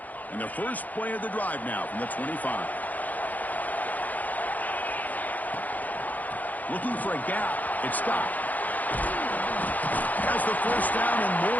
And the first play of the drive now from the 25. Looking for a gap. It's stopped. Has the 1st down and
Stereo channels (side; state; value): right; late; 0.080 ms